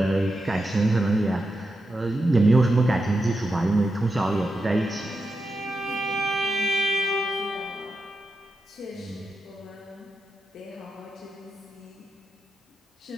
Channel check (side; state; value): both; normal; correlation 0.87